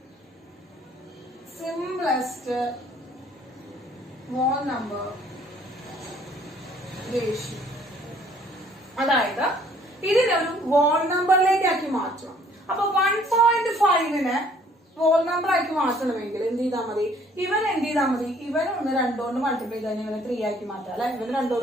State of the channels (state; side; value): normal; both; correlation 0.59